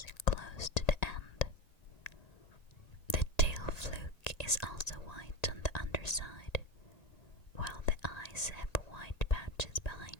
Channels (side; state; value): right; late; 1.9 ms